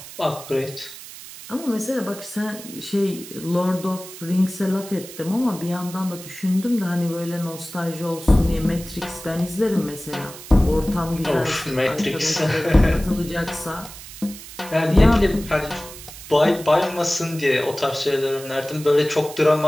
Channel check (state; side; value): noise; right; hiss, 15 dB below the sound